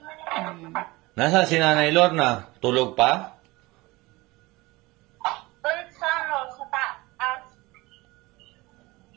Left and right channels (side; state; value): left; quieter; 21.7 dB